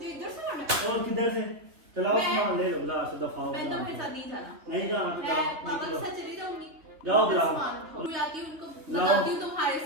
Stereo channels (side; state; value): left; late; 3.6 ms